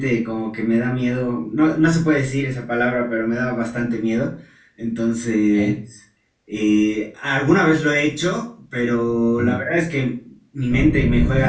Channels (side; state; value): both; identical; correlation 1.00